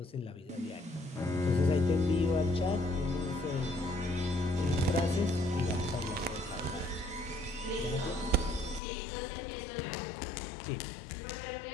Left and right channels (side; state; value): right; drops out; at 8.8 s